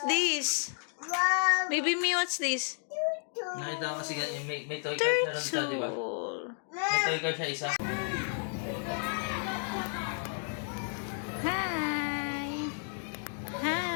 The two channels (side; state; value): right; silent; 56 dB below the other